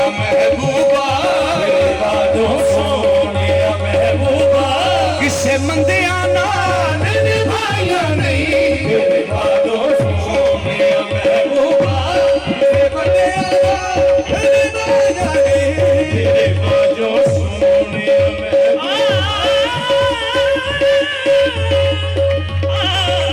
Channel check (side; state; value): both; identical; correlation 1.00